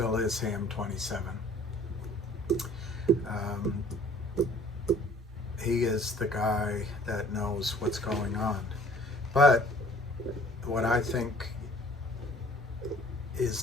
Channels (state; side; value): normal; both; correlation 0.53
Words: is Ham27. He is the guy that knows what's going on. But what I think